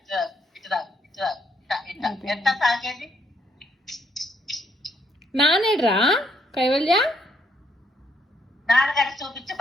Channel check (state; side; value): normal; both; correlation 0.72